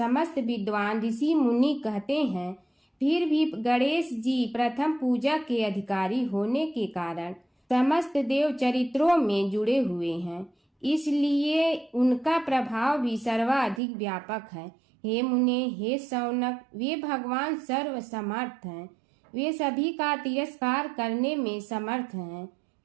विद्वान ऋषि मुनि कहते हैं। फिर भी गणेश जी प्रथम पूजा के अधिकारी होने के कारण समस्त देव चरित्रों में जुड़े हुए हैं, इसलिए उनका प्रभाव भी सर्वाधिक व्यापक है। हे मुने, हे शौनक, वे भगवान सर्व समर्थ हैं। वे सभी का तिरस्कार करने में समर्थ हैं,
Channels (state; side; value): drops out; left; at 13.8 s